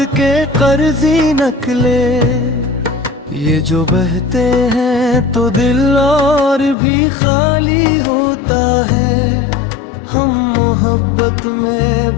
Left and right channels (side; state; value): right; drops out; at 6.8 s